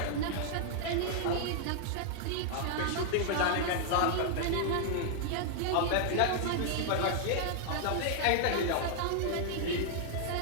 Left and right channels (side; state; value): both; different; correlation -0.01